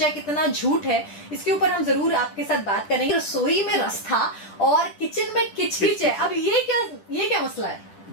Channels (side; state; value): right; late; 10 ms